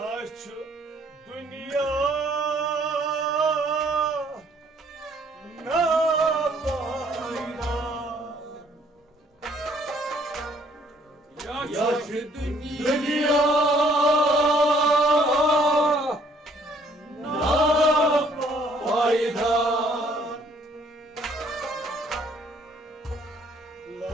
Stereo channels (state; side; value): normal; both; correlation 0.63